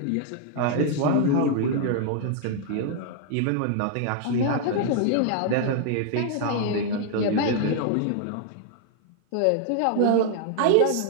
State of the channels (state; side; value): different; both; correlation 0.00